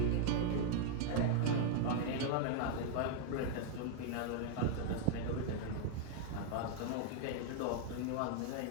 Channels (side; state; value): both; different; correlation 0.00